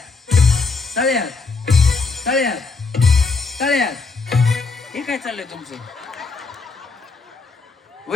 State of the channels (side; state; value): right; quieter; 4.2 dB